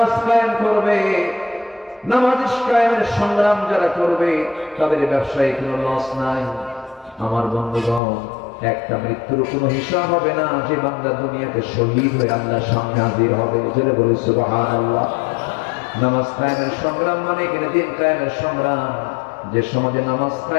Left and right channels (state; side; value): drops out; right; at 8.0 s